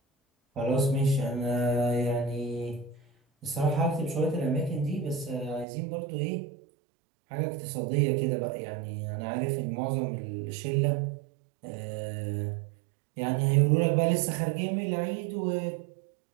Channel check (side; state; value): left; drops out; at 5.7 s